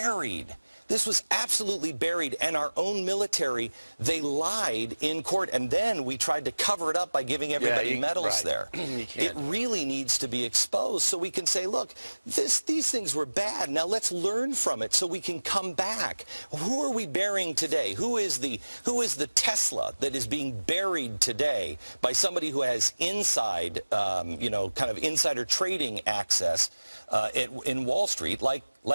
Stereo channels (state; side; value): inverted; both; correlation -1.00